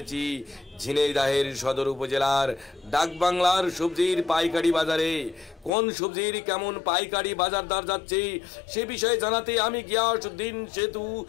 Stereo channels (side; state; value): right; drops out; at 5.7 s